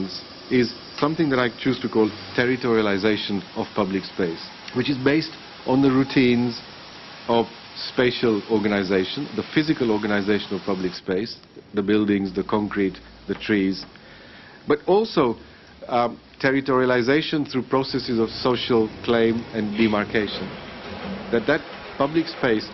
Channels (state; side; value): identical; both; correlation 1.00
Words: is something that I choose to call territorialization of public space, which is based on the routines of spatial organization, the physical organization of public space, the buildings, the concrete, the trees, but also territorialization through processes of social claim and demarcation. That public space